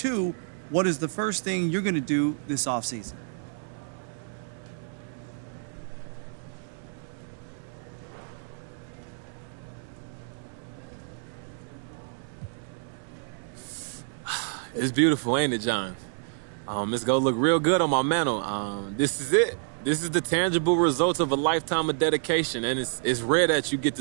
what is the first thing you're going to do this offseason? It's beautiful, ain't it, John? It's gonna look real good on my mantle. This is it. This is the tangible result of a lifetime of dedication, and it's rare that you get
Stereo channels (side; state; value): left; silent; 58 dB below the other